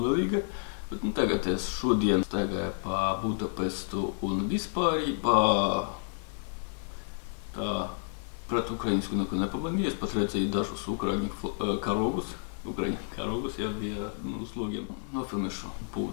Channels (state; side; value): silent; right; digital silence